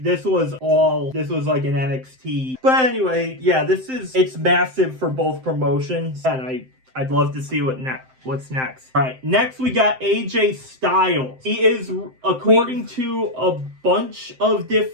was an NXT. But anyway, yeah, it's massive for both promotions, and I'd love to see what's next. All right, next we got AJ Styles. He is, according to a bunch of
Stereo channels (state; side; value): late; left; 7.7 ms